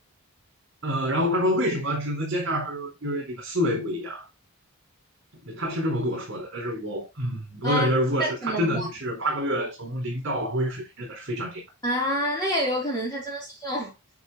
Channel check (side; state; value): both; normal; correlation 0.22